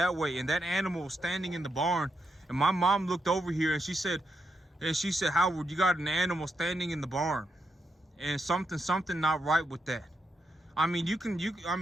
way, and that animal was standing in the barn. And my mom looked over here and she said, Howard, you got an animal standing in the barn, and something not right with that. I mean,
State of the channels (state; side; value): normal; both; correlation 0.82